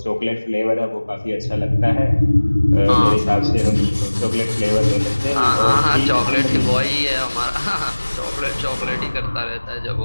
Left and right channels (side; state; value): both; inverted; correlation -1.00